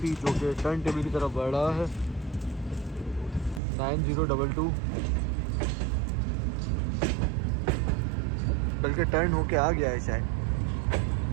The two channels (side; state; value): left; drops out; at 3.6 s